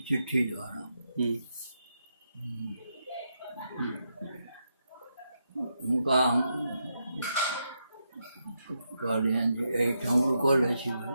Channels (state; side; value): inverted; both; correlation -0.83